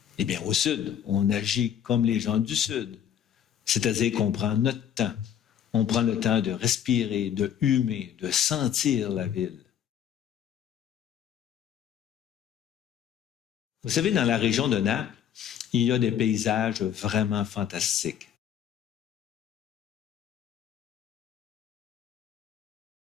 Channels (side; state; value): right; quieter; 9.4 dB